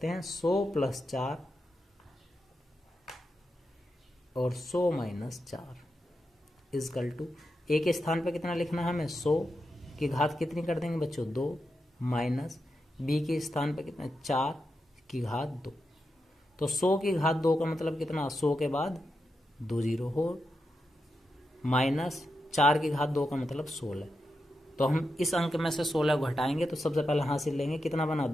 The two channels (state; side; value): normal; both; correlation 0.87